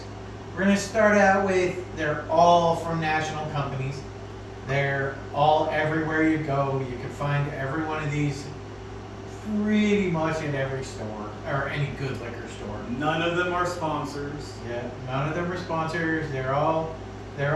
We're going to start out with, they're all from national companies. They're all everywhere you go. You can find every one of these pretty much at every store, or any good liquor store. None of them are sponsors. Yeah, none of them are sponsors. They're all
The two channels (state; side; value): identical; both; correlation 1.00